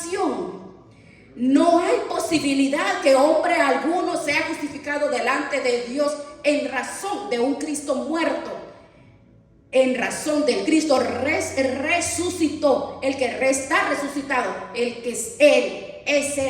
No hay posibilidad que hombre alguno sea justificado delante de Dios en razón de un Cristo muerto, en razón del Cristo resucitó. El que está resucitado, el que es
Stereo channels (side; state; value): both; identical; correlation 1.00